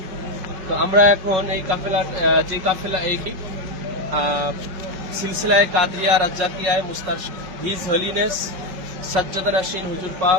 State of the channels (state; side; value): late; left; 5.3 ms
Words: তো আমরা এখন এই কাফেলা এই সিলসিলায় কাদরিয়া রাজ্জাকিয়ায় মুস্তারশিদ হিজ হলিনেস সাজ্জাদ নাশিন হুজুর